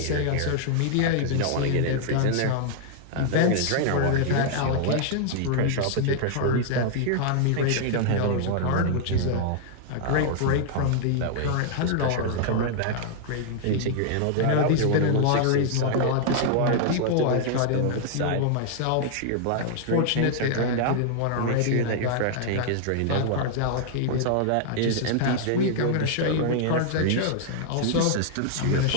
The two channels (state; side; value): different; both; correlation -0.01